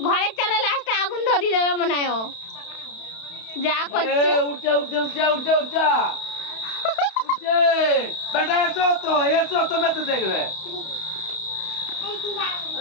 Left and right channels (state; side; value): late; right; 31 ms